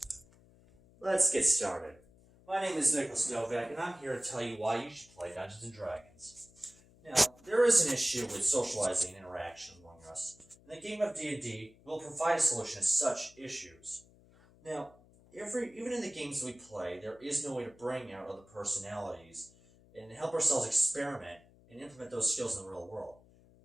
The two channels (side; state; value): left; noise; hum, 26 dB below the sound